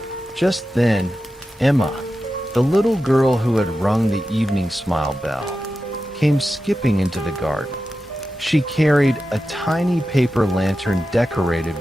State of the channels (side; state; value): both; normal; correlation 0.92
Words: Just then, Emma, the little girl who had rung the evening smile bell, came skipping into the garden. She carried a tiny paper lantern decorated